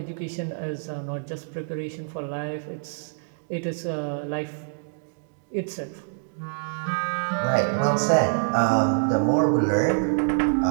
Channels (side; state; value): left; silent; digital silence